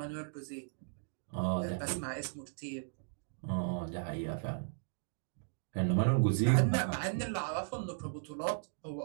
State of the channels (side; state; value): left; silent; digital silence